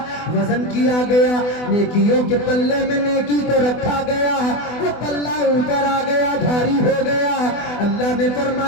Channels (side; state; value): right; late; 24 ms